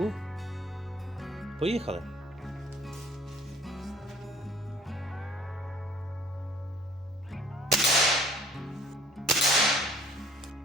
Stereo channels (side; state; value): both; normal; correlation 0.53